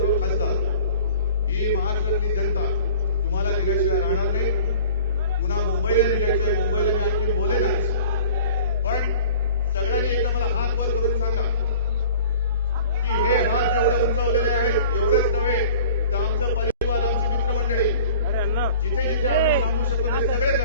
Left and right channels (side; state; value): both; inverted; correlation -0.46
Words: खासदार, ही महाराष्ट्रातली जनता तुम्हाला दिल्याशिवाय राहणार नाही. पुन्हा मुंबईला निघायचंय, मुंबईला मी आणखी बोलेनच, पण सगळ्यांनी एकदा मला हात वर करून सांगा की हे हात जेवढे उंचावलेले आहेत एवढेच नव्हे तर आमचं परिवार, आमची मित्रमंडळी, जिथे जिथे आम्ही सांगू शकतो ते